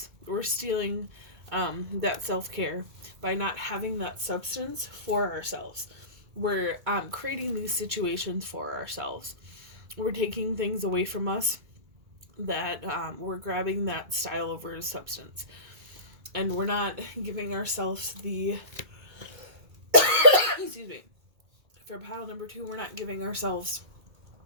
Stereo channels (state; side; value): late; left; 2.3 ms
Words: We're stealing that self-care by not having that substance for ourselves. We're creating these situations for ourselves. We're taking things away from us that we're grabbing that style over substance. And we're not giving ourselves the excuse me. For pile number 2, we're not giving ourselves